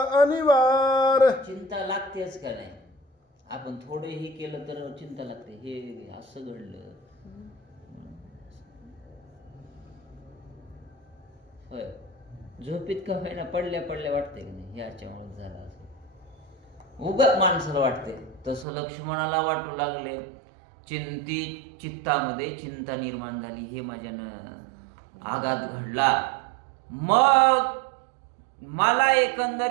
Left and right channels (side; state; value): left; drops out; at 18.7 s